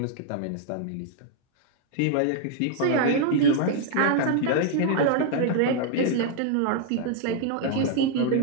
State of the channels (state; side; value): different; both; correlation 0.00